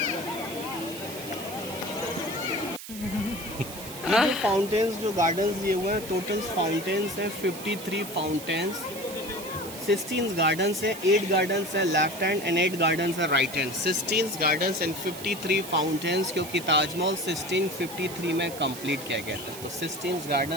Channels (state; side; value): noise; right; hiss, 12 dB below the sound